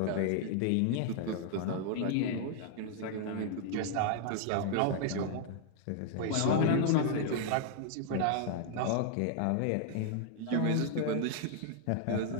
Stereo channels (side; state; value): both; different; correlation 0.00